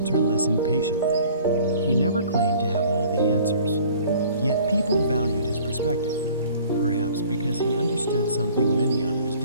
listened patiently. He never claimed to have all the answers. Yet people valued his perspective, perhaps because he understood something many others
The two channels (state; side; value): inverted; both; correlation -0.51